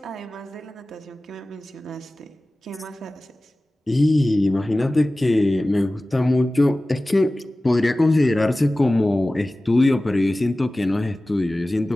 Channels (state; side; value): normal; both; correlation 0.97